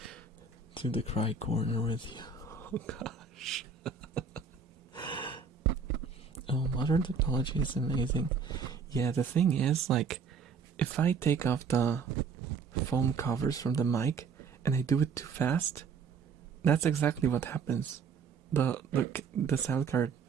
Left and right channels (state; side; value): quieter; left; 5.5 dB